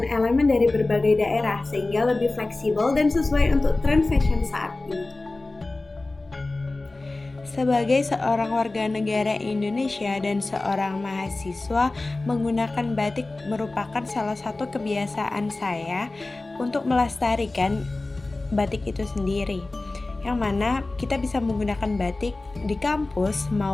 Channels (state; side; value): quieter; right; 3.1 dB